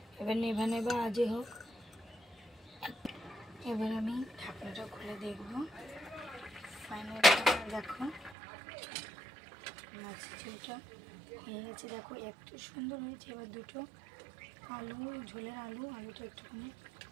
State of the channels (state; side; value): drops out; left; at 8.3 s